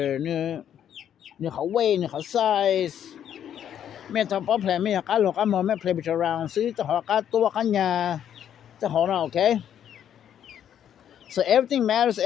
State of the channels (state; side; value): quieter; right; 9.7 dB